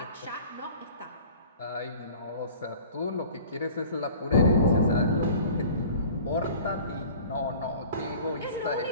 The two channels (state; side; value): inverted; both; correlation -0.45